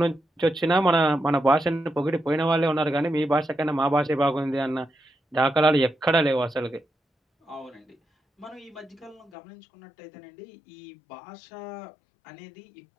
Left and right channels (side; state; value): right; drops out; at 9.3 s